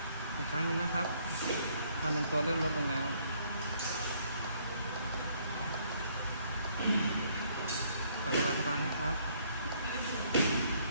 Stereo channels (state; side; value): inverted; both; correlation -0.66